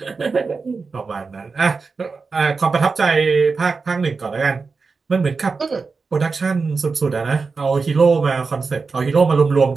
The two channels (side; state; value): left; quieter; 4.5 dB